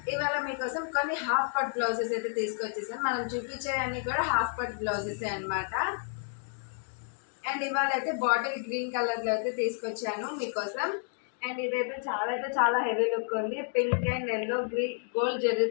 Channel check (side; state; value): right; silent; 57 dB below the other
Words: ఇవాళ మీకోసం కొన్ని హాఫ్ పట్ బ్లౌజెస్ అయితే తీసుకొచ్చేసాను. మనం చూపించేవన్నీ కూడా హాఫ్ పట్ బ్లౌజెస్ అనమాట. అండ్ ఇవాళ అయితే బాటిల్ గ్రీన్ కలర్లో అయితే తీసుకొచ్చాను మీకోసం. అండ్ ఇదైతే చాలా హెవీ లుక్ ఉంది. Pink and yellow green gold